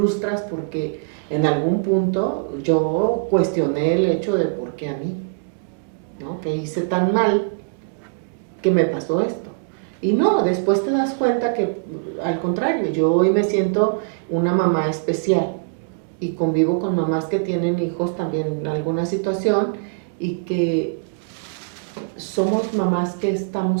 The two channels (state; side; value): quieter; left; 35.9 dB